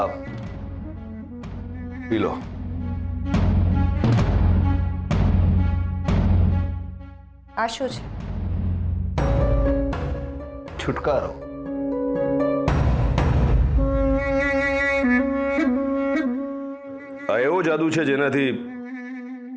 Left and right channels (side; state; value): both; identical; correlation 1.00